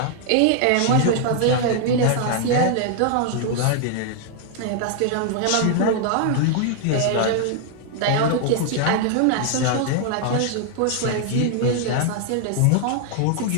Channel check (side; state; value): both; different; correlation 0.00